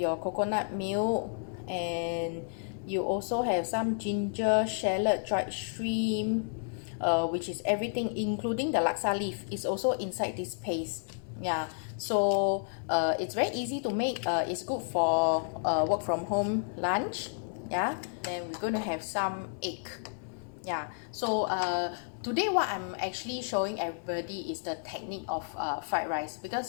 coconut milk, and you also have some ginger, shallot, dried shrimp, which is everything, including the laksa leaf, is also inside this paste. Yeah, so it's very easy to make. It's good for work from home lunch. Yeah, then we're going to have some egg. Yeah, so today what I'm actually showing everybody is the technique of fried rice,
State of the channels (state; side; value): silent; right; digital silence